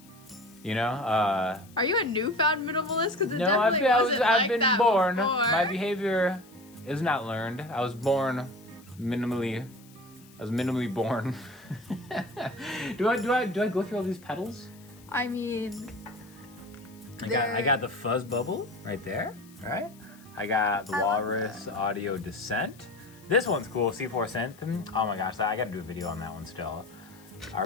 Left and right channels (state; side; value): noise; left; hiss, 25 dB below the sound